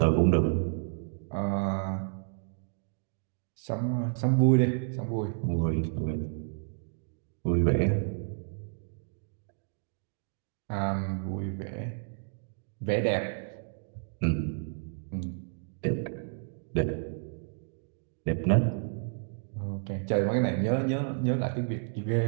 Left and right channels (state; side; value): silent; left; digital silence